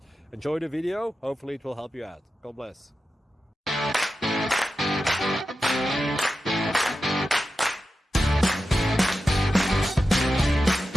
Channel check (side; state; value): both; normal; correlation 0.91